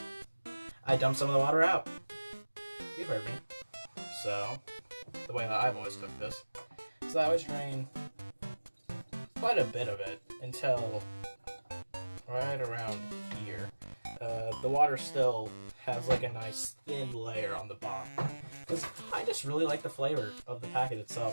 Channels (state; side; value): inverted; both; correlation -1.00